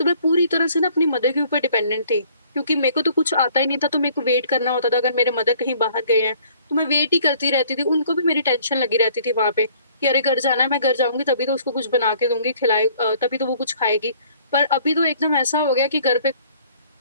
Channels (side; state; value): both; inverted; correlation -0.57